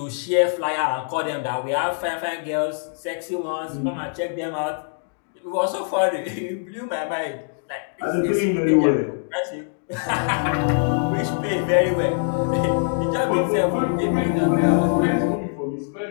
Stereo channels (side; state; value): right; silent; digital silence